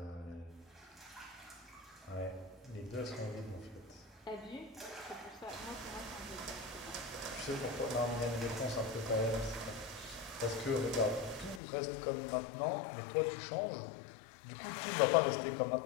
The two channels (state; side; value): drops out; right; at 11.6 s